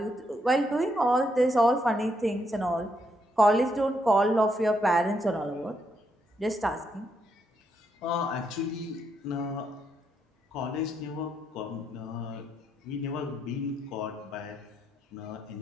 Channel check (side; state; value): both; normal; correlation 0.78